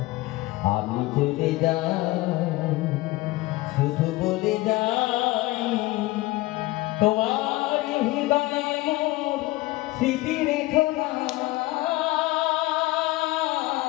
আমি চলে যাই শুধু বলে যাই তোমার হৃদয়ে মোর স্মৃতি রেখো না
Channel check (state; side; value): quieter; right; 19.6 dB